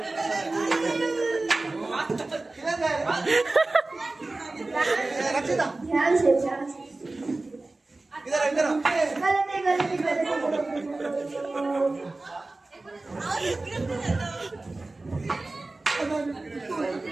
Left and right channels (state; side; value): quieter; left; 3.1 dB